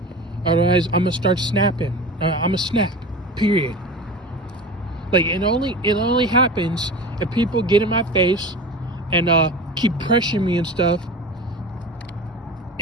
Otherwise, I'm gonna start snapping. I'm gonna snap. Period. Like, it only happens if people get in my face and keep pressuring me and stuff,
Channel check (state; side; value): normal; both; correlation 0.32